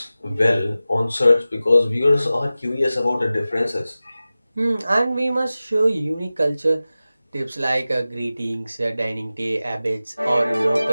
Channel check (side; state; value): both; inverted; correlation -0.96